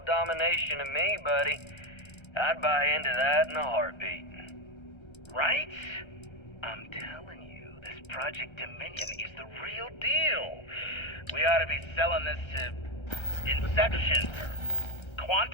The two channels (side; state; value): right; late; 1.3 ms